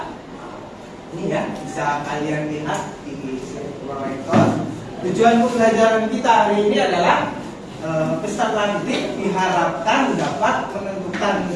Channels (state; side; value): identical; both; correlation 1.00